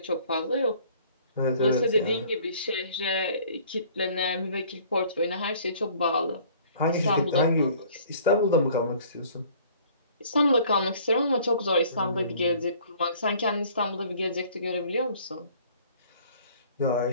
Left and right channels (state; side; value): inverted; both; correlation -0.54